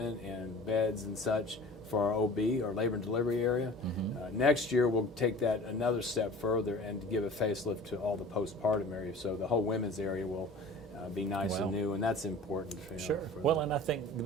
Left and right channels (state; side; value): normal; both; correlation 0.42